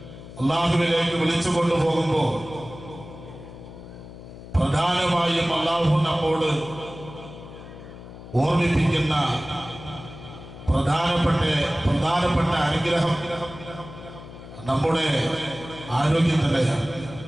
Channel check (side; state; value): left; noise; hum, 15 dB below the sound